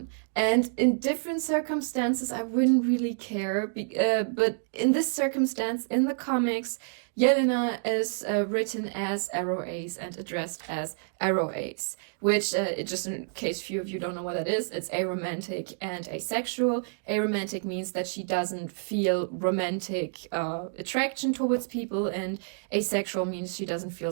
And in different circumstances, I wouldn't really care. But in this circumstance, in the comics, Yelena is written as AroAce and addressed as AroAce, which, just in case few of you don't know what that is, it's aromantic and asexual. Aromantic means that she doesn't feel romantic attraction towards people, and asexual means she doesn't feel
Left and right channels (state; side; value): silent; left; digital silence